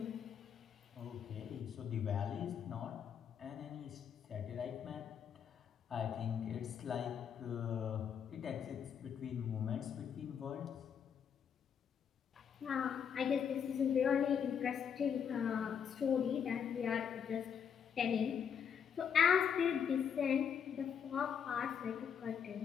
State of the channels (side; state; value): right; quieter; 7.7 dB